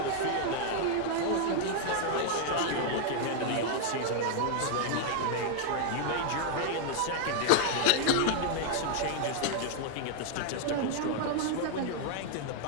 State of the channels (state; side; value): different; both; correlation 0.00